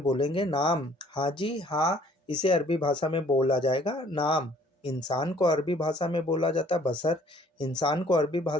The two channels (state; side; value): normal; both; correlation 0.57